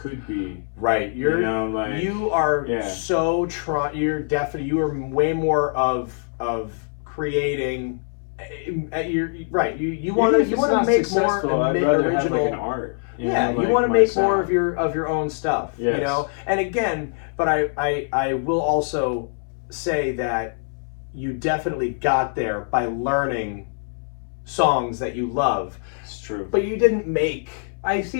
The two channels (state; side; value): silent; right; 62 dB below the other